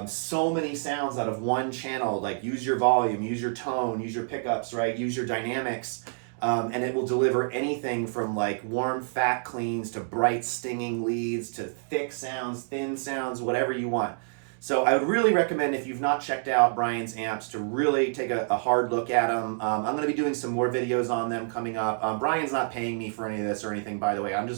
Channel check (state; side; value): silent; left; digital silence